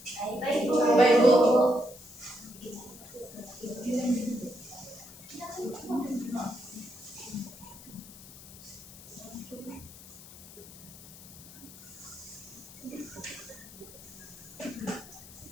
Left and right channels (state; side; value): noise; left; hiss, 17 dB below the sound